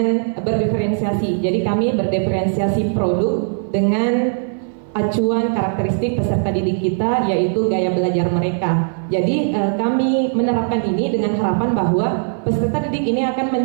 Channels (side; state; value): left; silent; 58 dB below the other